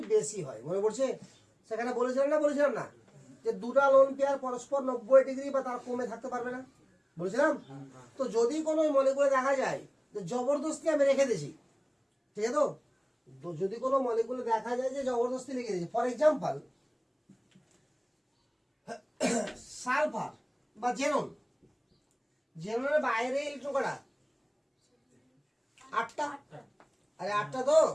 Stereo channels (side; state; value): both; identical; correlation 1.00